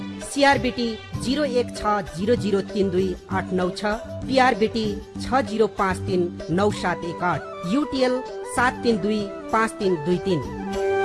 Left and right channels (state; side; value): identical; both; correlation 1.00